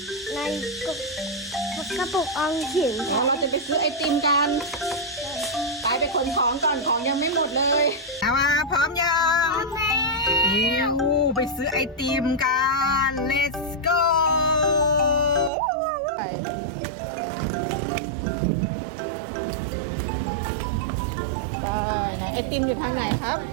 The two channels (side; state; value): left; drops out; at 15.5 s